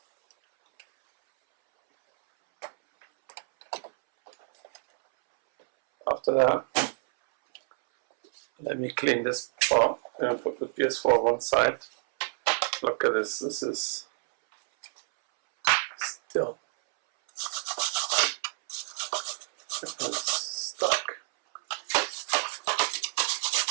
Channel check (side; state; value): left; silent; 59 dB below the other